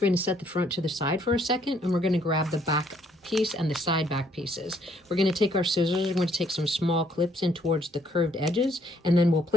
going to set the front to the side for a second, and we're going to grab the back piece and the side back pieces. We're going to take our scissors, we're going to take some small clips in towards the curved edges, and then we'll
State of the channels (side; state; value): both; normal; correlation 0.67